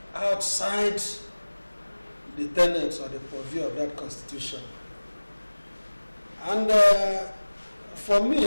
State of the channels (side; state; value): both; inverted; correlation -1.00